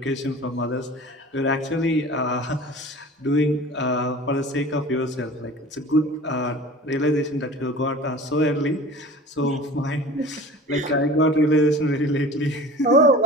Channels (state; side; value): normal; both; correlation 0.41